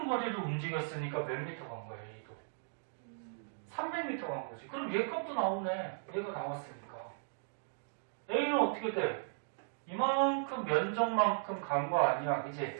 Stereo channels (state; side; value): silent; left; digital silence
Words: 거리를 움직였으니까 몇 미터 간 거야, A도? 300m 간 거지. 그럼 얘 값도 나오네. 얘가 나왔으니까. A는 어떻게 돼? 이만큼 면적만큼 간 거 아니야.